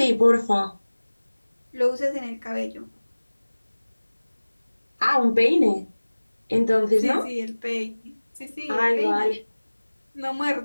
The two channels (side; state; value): both; inverted; correlation -1.00